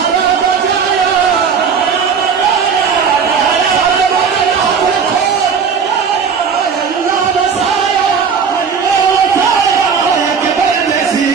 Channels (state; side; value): quieter; left; 6.3 dB